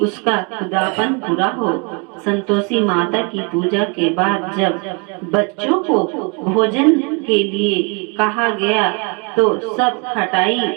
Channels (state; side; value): quieter; left; 33.6 dB